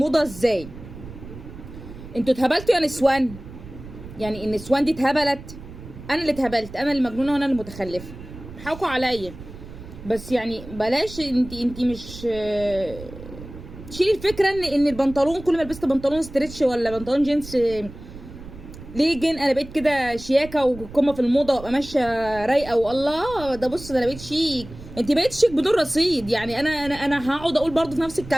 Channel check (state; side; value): noise; right; rumble, 15 dB below the sound